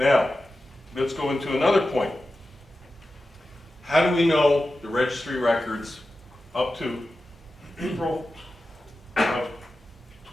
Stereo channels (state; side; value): normal; both; correlation 0.93